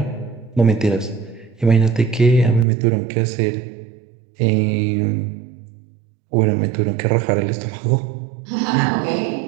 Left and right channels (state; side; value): drops out; left; at 2.7 s